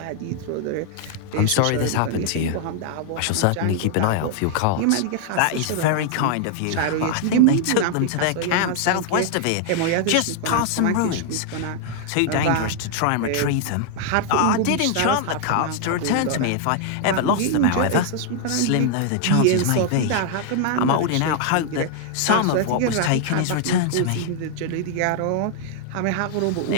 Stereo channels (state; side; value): different; both; correlation 0.00